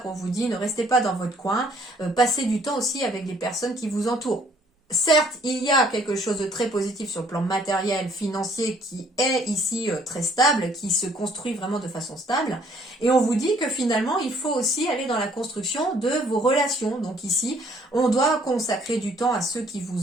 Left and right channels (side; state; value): both; normal; correlation 0.62